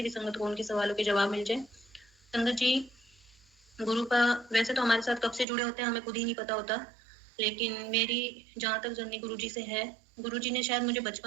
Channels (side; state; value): left; drops out; at 5.5 s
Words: भी संगत को उनके सवालों के जवाब मिल जाए। संगत जी, गुरु का वैसे तो हमारे साथ कब से जुड़े होते हैं हमें खुद ही नहीं पता होता, लेकिन मेरी जहाँ तक जर्नी गुरु जी से है, गुरु जी ने शायद मुझे